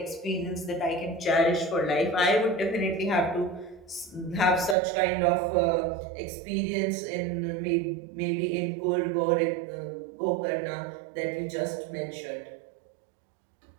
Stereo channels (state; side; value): drops out; left; at 4.8 s